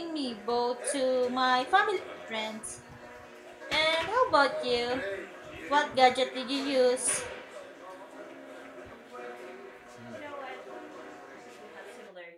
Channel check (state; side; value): identical; both; correlation 1.00